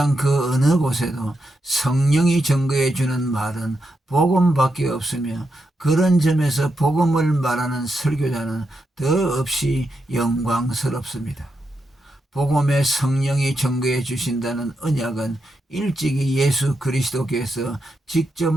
그 어느 곳에도 성령이 증거해 주는 말은 복음밖에 없으며, 그런 점에서 복음을 말하는 설교자는 더없이 영광스럽습니다. 복음의 성령이 증거해 주신다는 언약은 일찍이 예수 그리스도께서 직접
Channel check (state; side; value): normal; both; correlation 0.84